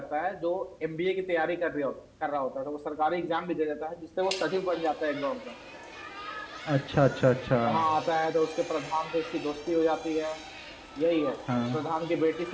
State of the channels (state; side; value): identical; both; correlation 1.00